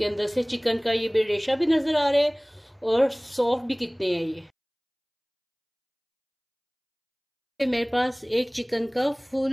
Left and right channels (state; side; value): identical; both; correlation 1.00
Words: अंदर से चिकन का ये रेशा भी नजर आ रहा है और सॉफ्ट भी कितने हैं ये। मेरे पास एक चिकन का फुल